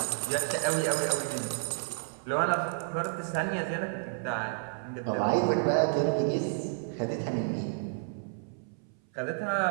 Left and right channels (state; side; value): silent; left; 57 dB below the other